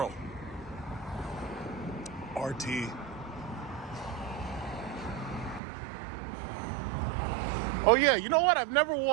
RT. Oh yeah, you know what? I've never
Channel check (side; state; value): left; drops out; at 5.6 s